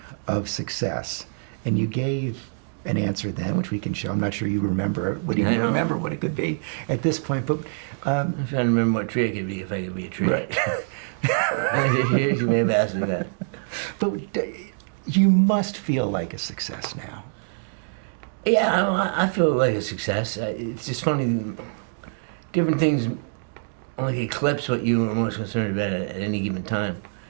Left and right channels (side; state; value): left; silent; digital silence